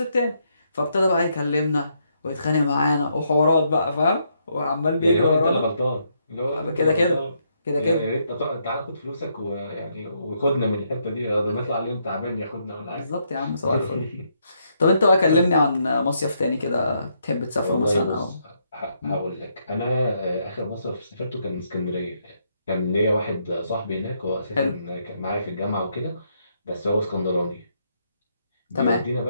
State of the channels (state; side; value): inverted; both; correlation -0.76